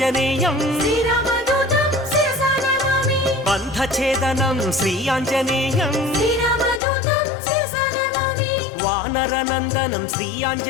శ్రీరామదూతం శిరసా నమామి బంధఛేదనం శ్రీ ఆంజనేయం శ్రీరామదూతం శిరసా నమామి వానరనందనం శ్రీ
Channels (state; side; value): drops out; right; at 6.8 s